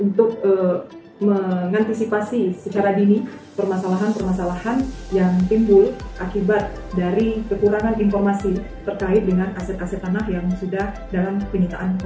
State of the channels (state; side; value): identical; both; correlation 1.00